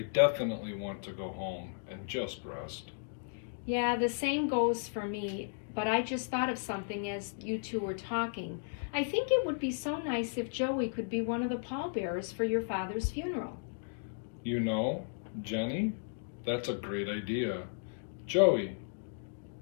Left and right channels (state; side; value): silent; right; digital silence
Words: definitely want to go home and just rest. Yeah, the same goes for me, but I just thought of something as you two were talking. I think it would be so nice if Joey could be one of the pallbearers for your father's funeral. You know, Jenny, that's a great idea. Joey,